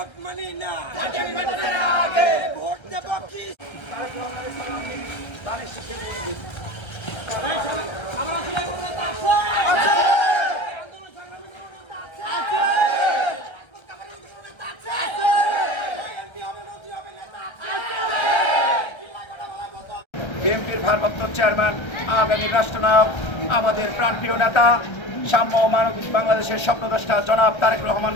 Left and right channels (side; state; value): right; late; 1.3 ms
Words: মানি না জাতীয় নির্বাচনের আগে ভোট দেব কি আমরা আসলে কোনো নেতা আছে? আন্দোলন সংগ্রামী কোনো নেতা আছে? রাজপথ কাঁপানোর কোনো নেতা আছে? এমপি হবে, মন্ত্রী হবে, নেতা আছে? চিল্লায় কথা বলার মতো বিএনপির ভারপ্রাপ্ত চেয়ারম্যান আগামী রাষ্ট্রনায়ক আমাদের প্রাণপ্রিয় নেতা সাম্য ও মানবিক বাংলাদেশের স্বপ্নদ্রষ্টা জনাব তারেক রহমান